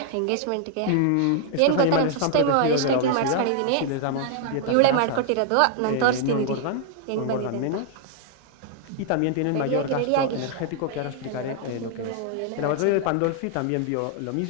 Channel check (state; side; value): different; both; correlation 0.00